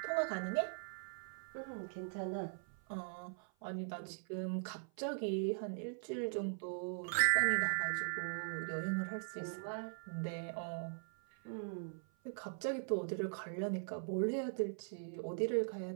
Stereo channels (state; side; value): silent; left; 51 dB below the other